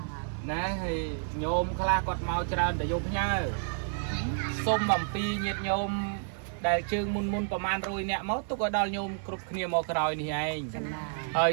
ណាហើយញោមខ្លះគាត់មកច្រើនតែយកផ្ញើសុំអំពីញាតិញោមដែលជើងមុនប្រហែល100នាក់មកទុកឲ្យដល់ញោមគ្រប់គ្នាមកក្រោយនេះឯងហើយ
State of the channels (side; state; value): left; silent; digital silence